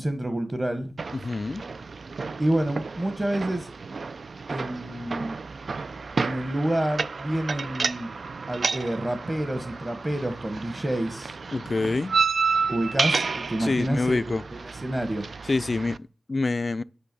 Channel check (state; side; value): normal; both; correlation 0.94